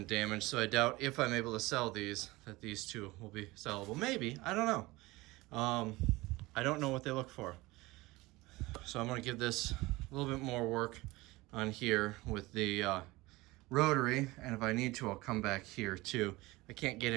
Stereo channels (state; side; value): quieter; left; 20.9 dB